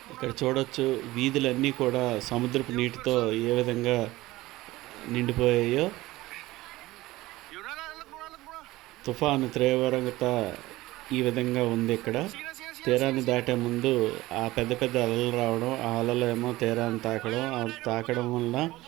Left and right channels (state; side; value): quieter; left; 18.3 dB